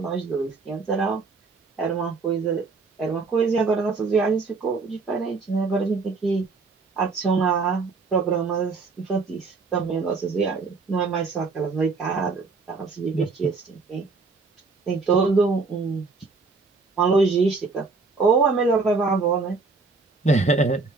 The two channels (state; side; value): quieter; left; 4.1 dB